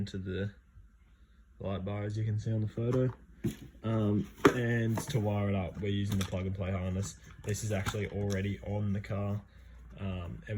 the light bar as you can see on the photo. And to wire it up, we're using the plug and play harness. This is actually already on the car,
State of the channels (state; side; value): identical; both; correlation 1.00